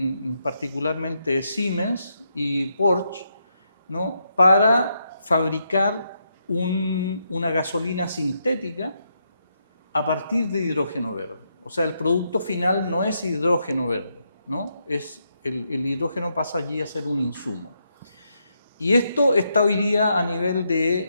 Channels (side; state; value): both; inverted; correlation -0.80